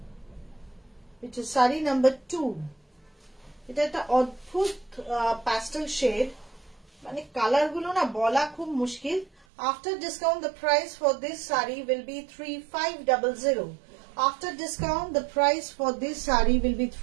which is sari number 2. এটা একটা অদ্ভুত pastel shade, মানে কালার গুলো না বলা খুব মুশকিল। After discount, the price for this sari will be 3500. After discount, the price for this sari will be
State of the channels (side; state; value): left; drops out; at 9.5 s